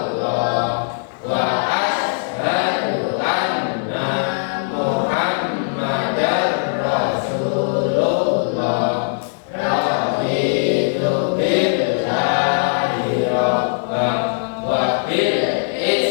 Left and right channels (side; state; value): right; silent; digital silence